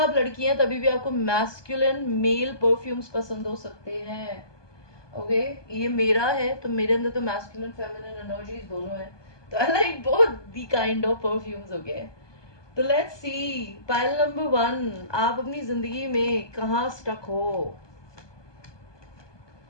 लड़की हैं तभी भी आपको मैस्कुलिन मेल परफ्यूम्स पसंद हो सकते हैं. ओके, ये मेरा है तो मेरे अंदर तो मैस्कुलिन फेमिनिन एनर्जीज दोनों है, तो I like both the kind of perfumes. Okay, तो लेट्स सी पाइल नंबर 1, आप अपनी जिंदगी में कहाँ स्टक हो.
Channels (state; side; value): late; right; 1.2 ms